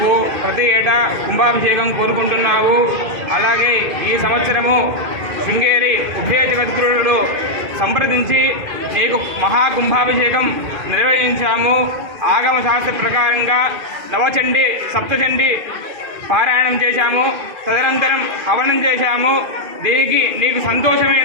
ప్రతి ఏటా కుంభాభిషేకం కోరుకుంటున్నావు. అలాగే ఈ సంవత్సరము శృంగేరి ఉభయ జగద్గురుడు సంప్రదించి నీకు మహాకుంభాభిషేకం నిర్వహించాము. ఆగమ శాస్త్ర ప్రకారంగా నవచండి సప్తచండి పారాయణం చేశాము. తదనంతరం హవనం చేశాము. దీనికి నీకు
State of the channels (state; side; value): late; left; 2.5 ms